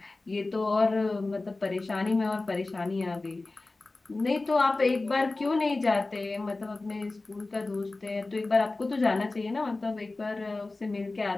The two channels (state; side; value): quieter; right; 3.3 dB